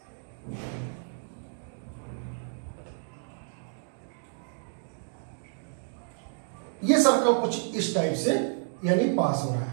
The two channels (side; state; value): left; silent; digital silence